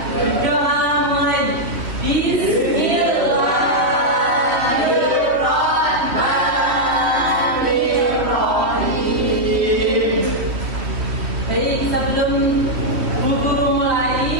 Berdoa mulai. Bismillahirrahmanirrahim. Baik, sebelum guru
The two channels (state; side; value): late; left; 3.1 ms